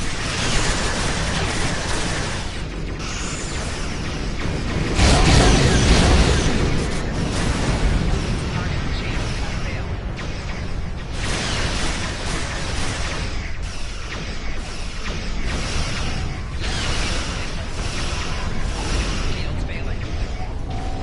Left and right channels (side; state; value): both; identical; correlation 1.00